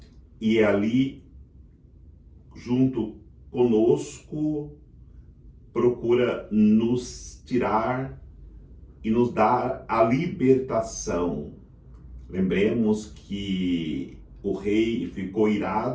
e ali, junto conosco, procura nos tirar e nos dar a libertação. Lembremos que o rei ficou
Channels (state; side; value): identical; both; correlation 1.00